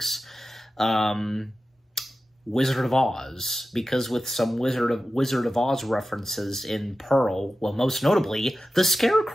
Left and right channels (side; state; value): both; normal; correlation 0.94